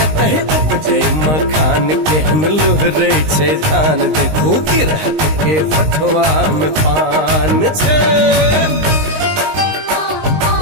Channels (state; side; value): late; left; 19 ms